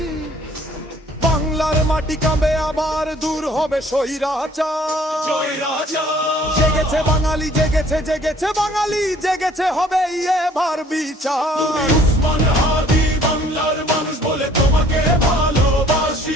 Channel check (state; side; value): normal; both; correlation 0.57